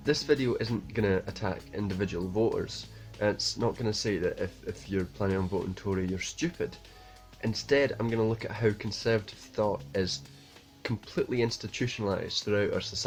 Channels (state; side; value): identical; both; correlation 1.00